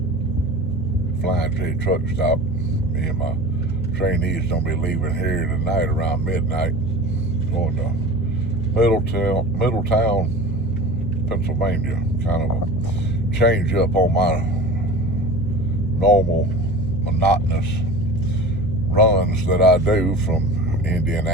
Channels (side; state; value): both; normal; correlation 0.35